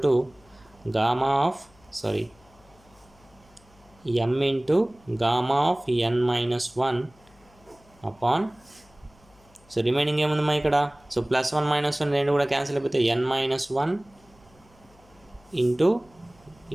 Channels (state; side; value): noise; left; hum, 29 dB below the sound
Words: to gamma of m into gamma of n-1 upon, so remaining ఏముందమ్మా ఇక్కడ, సో +1 - 1 రెండు కూడా క్యాన్సిల్ అయిపోతే n-1 ఇంటూ